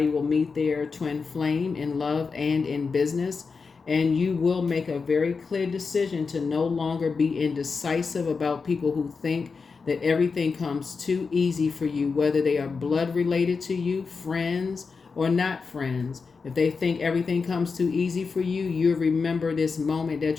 their twin flame in love and in business. And you will make a very clear decision to no longer be indecisive about people who think that everything comes too easy for you, whether they are blood related to you, friends, or not friends. If they think everything comes too easy for you, you'll remember this moment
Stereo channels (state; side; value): quieter; right; 4.9 dB